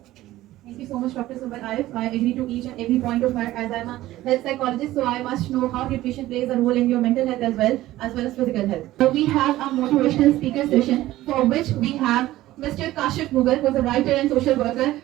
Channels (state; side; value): quieter; left; 15.8 dB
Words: Thank you so much, Dr. Sumbul Arif. I agree to each and every point of her, as I'm a health psychologist, so I must know how nutrition plays a role in your mental health as well as physical health. So we have a motivational speaker session for which we have Mr. Kashif Mughal, who is a writer and social worker.